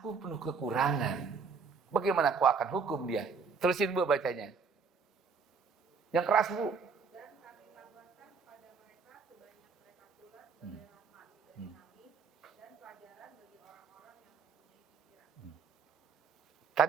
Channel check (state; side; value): quieter; left; 5.4 dB